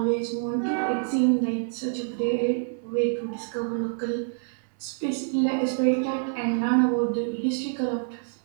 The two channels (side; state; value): left; silent; 60 dB below the other